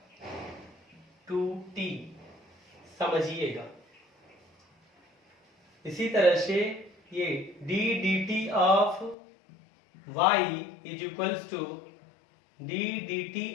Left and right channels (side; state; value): right; drops out; at 9.2 s